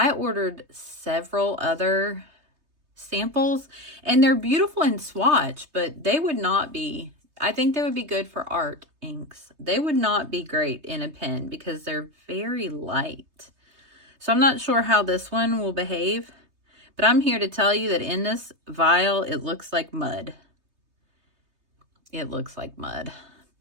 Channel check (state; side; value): late; left; 3.2 ms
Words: ordered several other samples and they're beautiful in swatch, but they would not be, I think they would be good for art inks. They would not be great in a pen because they're very light. So I'm not sure how this one will behave, but I'm here to tell you that in this vial, it looks like mud. It looks like mud,